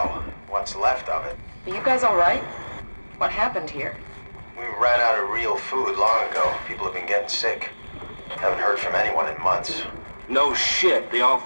What's left of it. Are you guys alright? What happened here? We ran out of real food long ago. People have been getting sick. Haven't heard from anyone in months. No shit, they all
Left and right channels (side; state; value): both; inverted; correlation -1.00